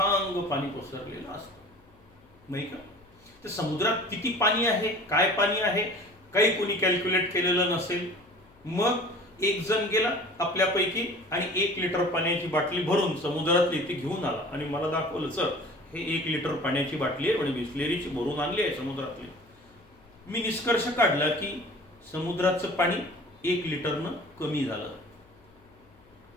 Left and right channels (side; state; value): left; noise; hum, 29 dB below the sound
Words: पाणी पसरलेलं असतं नाही का. तर समुद्रात किती पाणी आहे, काय पाणी आहे, काही कोणी कॅल्क्युलेट केलेलं नसेल. मग एक जण गेला आपल्यापैकी आणि 1 लिटर पाण्याची बाटली भरून समुद्रातली ती घेऊन आला आणि मला दाखवलं, सर हे 1 लिटर पाण्याची बाटली आहे आणि बिस्लेरीची भरून आणली आहे समुद्रातली. मी निष्कर्ष काढला की समुद्राचं पाणी 1 लिटरनं कमी झालं.